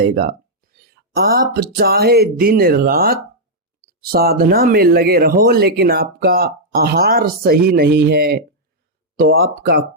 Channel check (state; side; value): normal; both; correlation -0.06